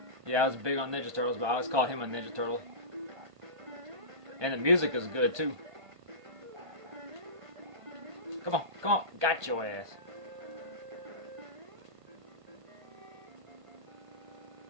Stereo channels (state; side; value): late; left; 1.5 ms